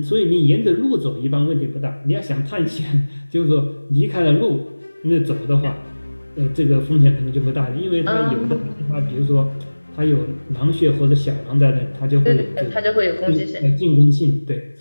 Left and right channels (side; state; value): both; inverted; correlation -1.00